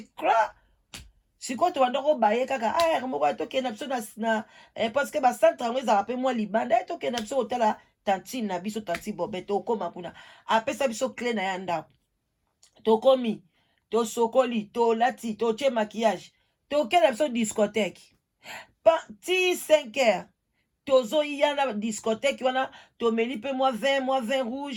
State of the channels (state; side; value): identical; both; correlation 1.00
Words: cra sikoyo tobanda kobaye kaka moko tokende na biso na parce que bacentre yango ezalaka mpe mwa libanda tokende na biso kotala tantine na biso tanti Bobe tokoma kuna apesa biso clé na ya ndako tokomi tosokoli tolati totie maquillage tokende na biso discothèque ti 5 heures tozoya na discothèque wana tomeli mpe mwa vin